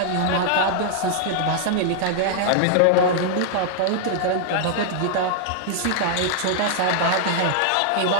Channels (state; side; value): different; both; correlation -0.01